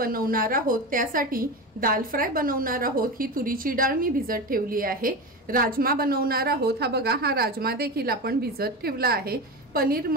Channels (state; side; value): normal; both; correlation 0.23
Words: आहोत। त्यासाठी दाल फ्राय बनवणार आहोत। ही तुरीची डाळ मी भिजत ठेवली आहे। राजमा बनवणार आहोत। हा बघा, हा राजमा देखील आपण भिजत ठेवला आहे। पनीर